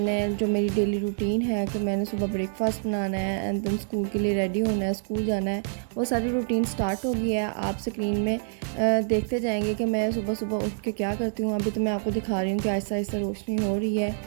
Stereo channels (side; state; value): left; silent; digital silence